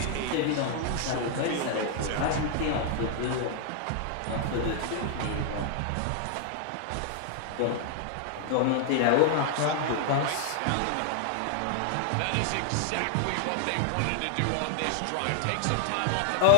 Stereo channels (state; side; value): different; both; correlation -0.01